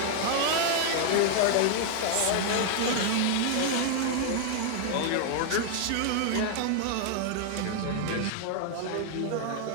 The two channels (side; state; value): both; different; correlation 0.00